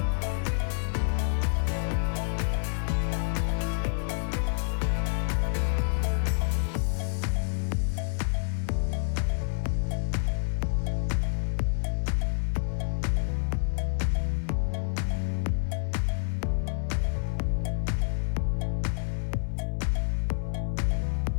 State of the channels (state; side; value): silent; right; 59 dB below the other